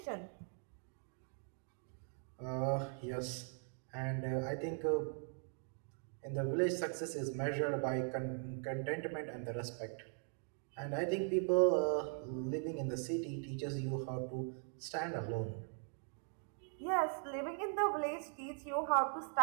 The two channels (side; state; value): left; silent; 51 dB below the other